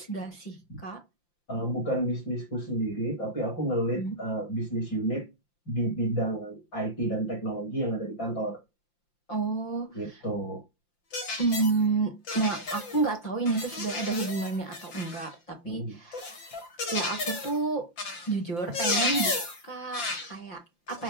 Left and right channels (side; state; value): right; late; 5.8 ms